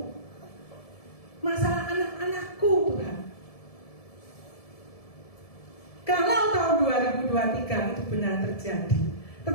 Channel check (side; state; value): right; late; 1.7 ms